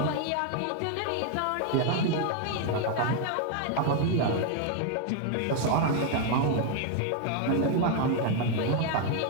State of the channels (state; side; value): different; both; correlation 0.00